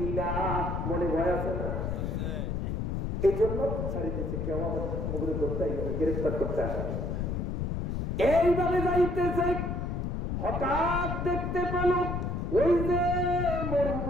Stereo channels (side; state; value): left; noise; rumble, 1 dB below the sound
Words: মনে ভয় আছে না? এই জন্য ছাড়ি দিচ্ছে, কেউ আবার মুখে ধরতে গ্রেফতার করতে আসে। এইভাবে যাইতেছে, হঠাৎ দেখতে পেল ওই যে